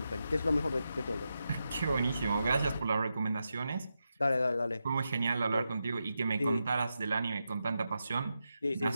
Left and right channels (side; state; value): both; inverted; correlation -0.88